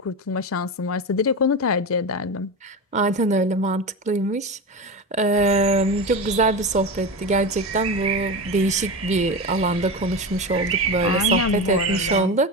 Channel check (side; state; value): both; normal; correlation 0.22